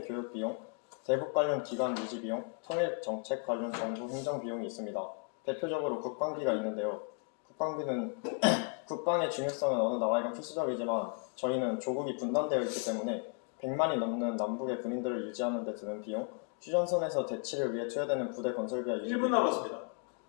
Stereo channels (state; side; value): quieter; right; 38.4 dB